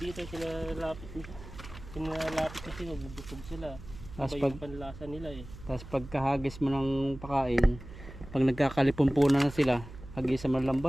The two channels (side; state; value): right; noise; hum, 15 dB below the sound